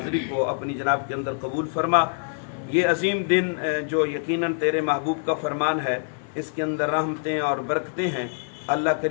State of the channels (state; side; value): silent; right; 62 dB below the other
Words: کو اپنی جناب کے اندر قبول فرما۔ یہ عظیم دن جو یقیناً تیرے محبوب کا فرمان ہے، اس کے اندر رحمتیں اور برکتیں ہیں۔ اللہ